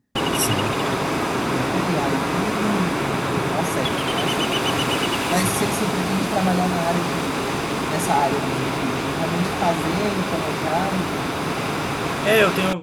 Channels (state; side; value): identical; both; correlation 1.00